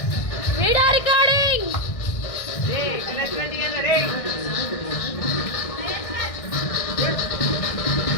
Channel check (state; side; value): late; right; 1.6 ms